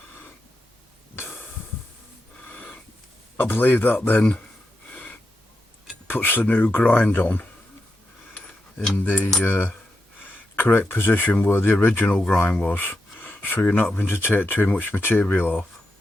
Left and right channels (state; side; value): normal; both; correlation 0.86